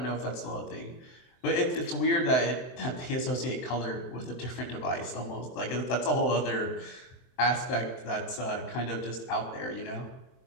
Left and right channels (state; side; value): late; right; 23 ms